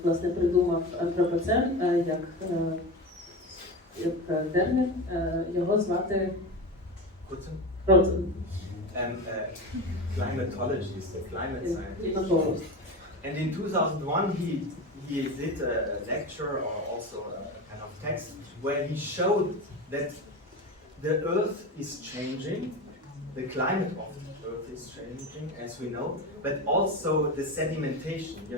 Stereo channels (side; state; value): both; normal; correlation 0.24